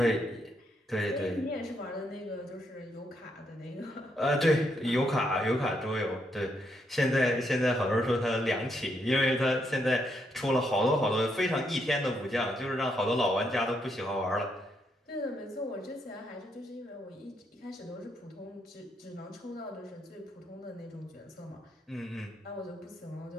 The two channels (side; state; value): both; normal; correlation 0.77